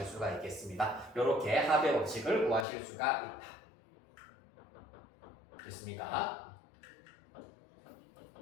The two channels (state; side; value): drops out; right; at 2.7 s